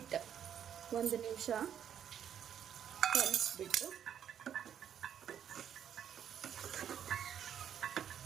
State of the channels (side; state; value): left; quieter; 9.2 dB